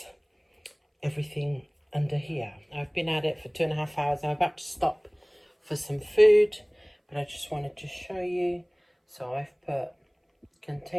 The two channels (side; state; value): both; identical; correlation 1.00